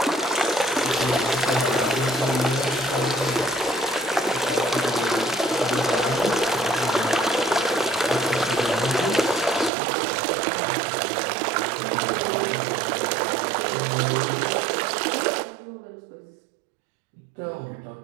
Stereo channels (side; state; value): left; drops out; at 9.7 s